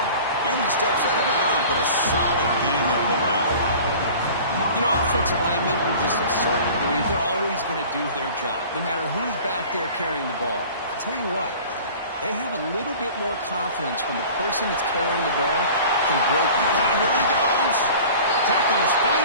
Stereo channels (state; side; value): inverted; both; correlation -0.42